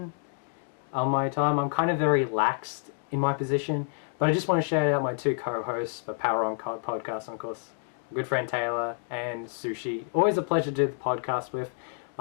on my time. I'm kind of very laxed in my position, but I just want to shout out my two co-hosts for Power On Podcast, of course, my good friend Taylor and Sushi. Always a pleasure to do the podcast with.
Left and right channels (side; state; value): right; silent; 59 dB below the other